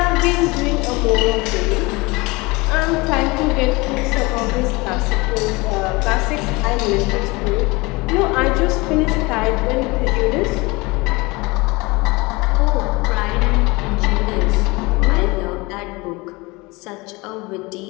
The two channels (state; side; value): quieter; right; 24.3 dB